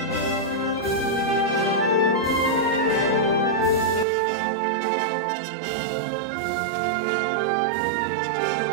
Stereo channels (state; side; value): drops out; left; at 4.0 s